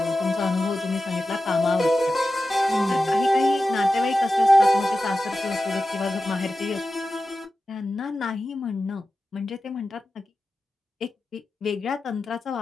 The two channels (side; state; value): both; normal; correlation 0.93